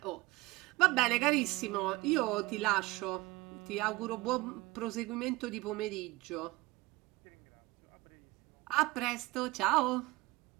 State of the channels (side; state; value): left; quieter; 21.1 dB